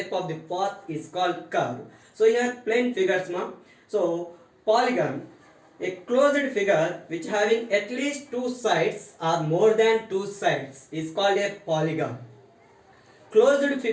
of the path is called curve. So here plane figures, ma. So polygon, a closed figure which having at least two sides or more than two sides is called a polygon. Closed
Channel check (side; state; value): both; identical; correlation 1.00